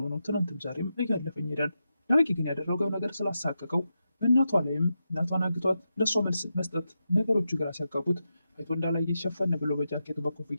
ነው ትናንትም ዛሬም እያለፈኝ ሄዳል። ዳጊ ግን ያደረገው ነገር ስላሳቀቀው በእናቷ ላይም እናቷን አግቷት ለእሷ መልስ መስጠት ነገሮቹ ግራ ሲያጋቡት አይቶ እንዳላየ ሸፈን ብሎ በጃኬቱ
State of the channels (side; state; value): both; inverted; correlation -0.88